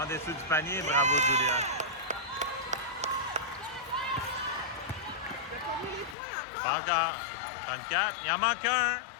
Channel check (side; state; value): right; drops out; at 6.2 s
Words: en dessous du panier, bravo Julia. Pas encore. 34, il en manque un.